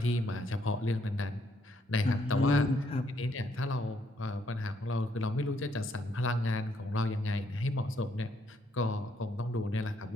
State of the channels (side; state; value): both; normal; correlation 0.71